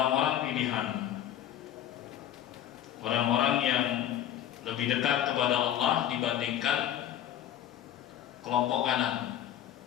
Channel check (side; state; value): right; quieter; 11.0 dB